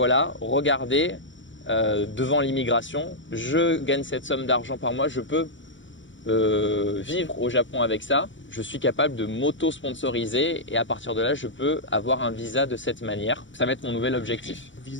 regardez, devant l'immigration, je gagne cette somme d'argent par mois, je peux vivre au Japon avec ça, je suis capable de m'auto-sponsoriser et à partir de là, je peux avoir un visa de cette manière. Ça va être mon nouvel objectif.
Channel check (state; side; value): late; right; 0.55 ms